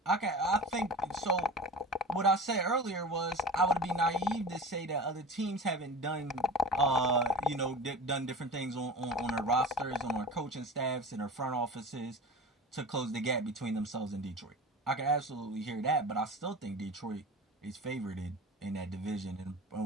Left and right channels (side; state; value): both; normal; correlation 0.34